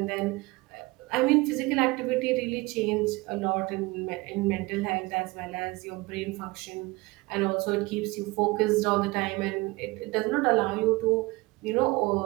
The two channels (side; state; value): left; quieter; 22.8 dB